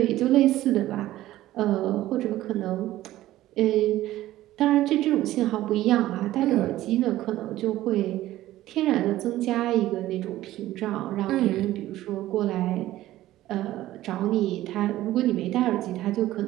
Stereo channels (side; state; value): left; quieter; 15.0 dB